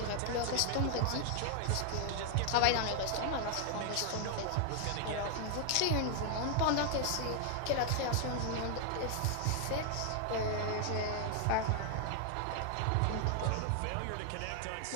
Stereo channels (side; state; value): both; different; correlation 0.00